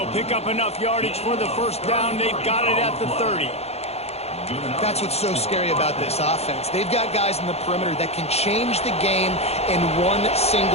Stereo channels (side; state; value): right; late; 0.30 ms